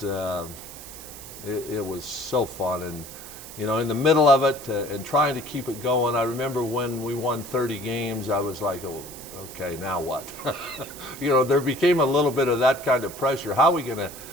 it was so fun, and you know, in the middle of it and trying to keep it going. I remember when we won 30 games, I was like, oh, okay, now what? You know, there became a little bit of that kind of pressure. How are we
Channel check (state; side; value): noise; right; hiss, 14 dB below the sound